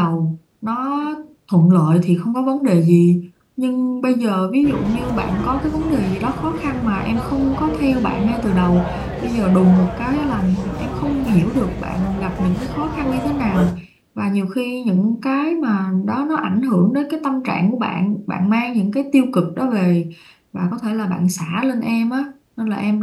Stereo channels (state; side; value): identical; both; correlation 1.00